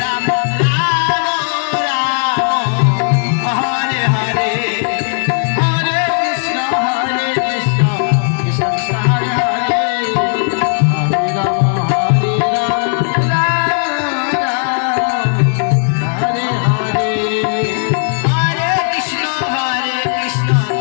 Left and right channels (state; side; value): silent; right; 63 dB below the other